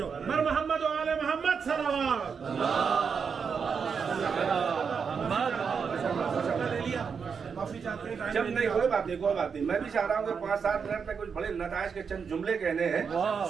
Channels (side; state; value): left; quieter; 6.1 dB